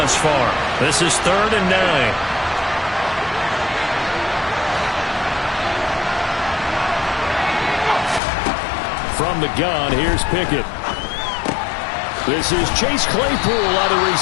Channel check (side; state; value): right; drops out; at 8.2 s